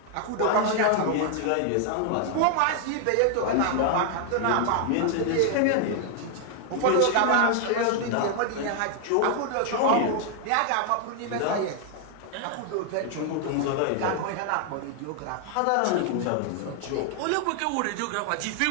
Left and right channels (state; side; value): different; both; correlation 0.00